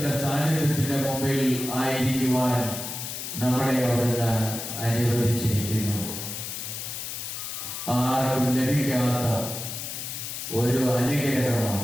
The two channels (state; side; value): noise; left; hiss, 6 dB below the sound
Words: സാന്നിധ്യത്തിന്റെ മുമ്പിൽ ആയിരിക്കുവാൻ നമ്മളെ അവിടുന്ന് അനുവദിച്ചിരിക്കുന്നു. ആർക്കും ലഭിക്കാത്ത ഒരു